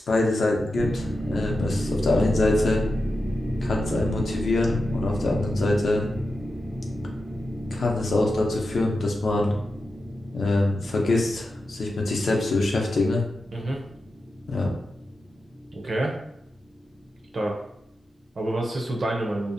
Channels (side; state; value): both; normal; correlation 0.90